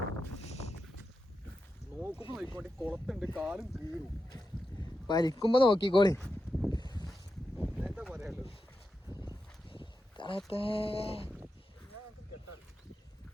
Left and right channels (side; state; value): both; normal; correlation 0.89